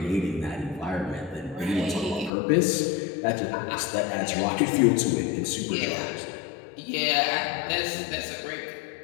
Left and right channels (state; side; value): drops out; right; at 2.3 s